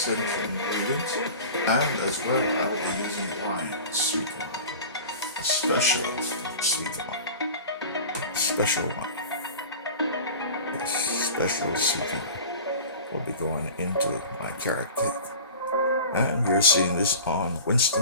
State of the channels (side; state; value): both; inverted; correlation -0.37